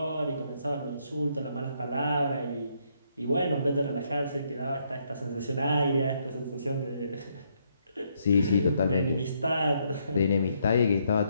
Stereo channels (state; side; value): inverted; both; correlation -0.73